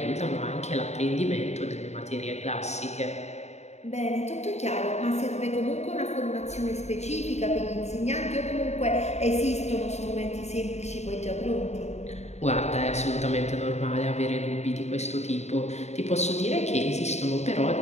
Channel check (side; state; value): right; late; 0.32 ms